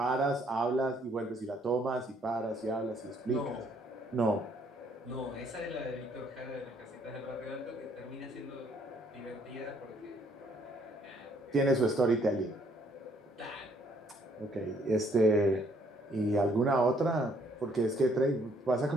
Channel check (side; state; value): both; normal; correlation 0.65